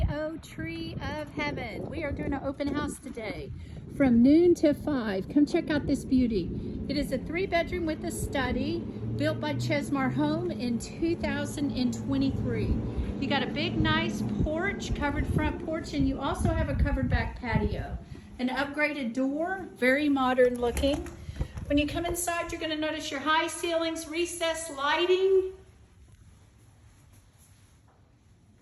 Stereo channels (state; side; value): identical; both; correlation 1.00